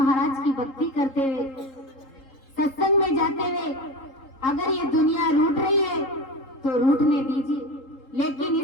की भक्ति करते हुए, सत्संग में जाते हुए, अगर ये दुनिया रूठ रही है तो रूठने दीजिए, लेकिन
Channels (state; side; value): late; right; 3.7 ms